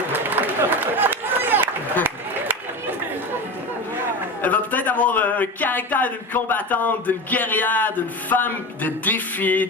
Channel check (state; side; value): normal; both; correlation 0.26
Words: Elle va peut-être avoir un caractère d'une combattante, d'une guerrière, d'une femme de défi,